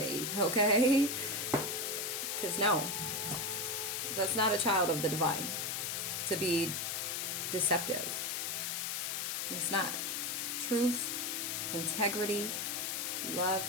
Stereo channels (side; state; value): left; noise; hiss, 1 dB below the sound